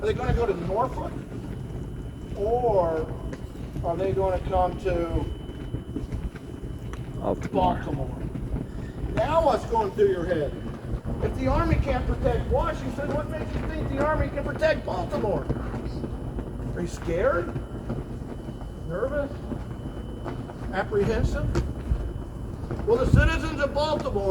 Are they going to go to Norfolk? Or are they going to come to Baltimore? Now what's going through your head? If the Army can't protect Washington, what makes you think the Army can protect Baltimore? Are you scared? Nervous? Apprehensive? Well, the citizens of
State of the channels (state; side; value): identical; both; correlation 1.00